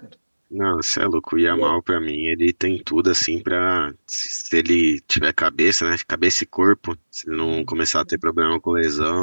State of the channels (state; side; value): inverted; both; correlation -1.00